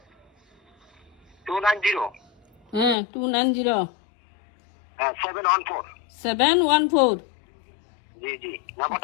290 হ্যাঁ 290 714। 714। জি জি,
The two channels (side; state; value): right; drops out; at 3.0 s